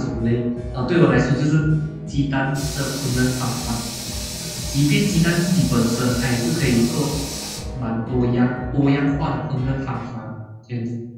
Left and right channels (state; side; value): identical; both; correlation 1.00